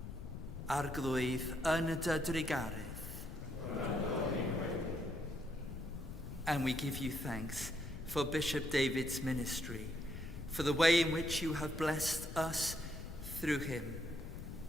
arglwydd yn dy drigaredd. And we give you thanks for Bishop David's ministry, for the way in which you have blessed us through him,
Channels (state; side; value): noise; left; rumble, 9 dB below the sound